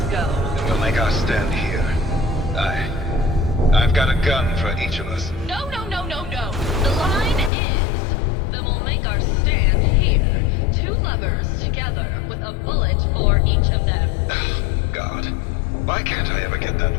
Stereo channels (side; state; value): right; drops out; at 7.5 s